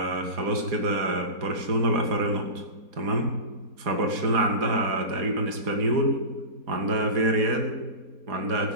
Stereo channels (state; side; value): late; left; 4.2 ms